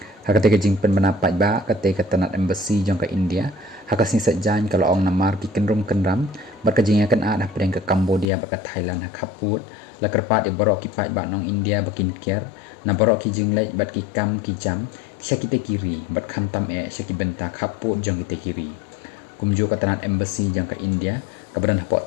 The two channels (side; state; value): right; drops out; at 8.2 s